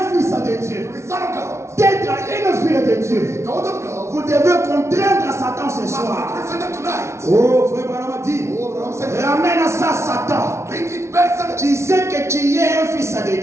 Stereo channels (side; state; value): left; late; 0.13 ms